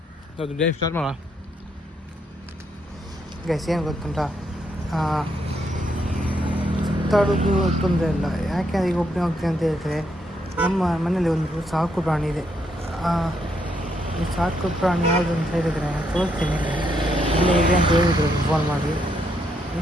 ಅದು ಡೇ ಸ್ಟಾರ್ಟ್ ಮಾಡೋಣ. ಗೈಸ್ ಏನು ಗೊತ್ತುಂಟ, ಸುತ್ತಾಡೋದು ತೊಂದರೆ ಇಲ್ಲ. ಯಾಕೆ ಈಗ ಒಬ್ಬನೇ ಹೋಗ್ತೀನಿ ಅಂತ ಹೇಳಿದ್ರೆ, ನಮ್ಮ ಮನೇಲಿ ಒಂದು ಸಾಕು ಪ್ರಾಣಿ ಇದೆ. ಈ ಸಾಕು ಪ್ರಾಣಿ ಯಾವುದು ಅಂತ ಹೇಳಿದರೆ ತೋರಿಸ್ತೀನಿ. ಇಲ್ಲೇ ಇದೆ ಅಂತ ಹೇಳಿದ್ರು ಫೋನ್ ಮಾಡಿ.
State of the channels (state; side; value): normal; both; correlation 0.76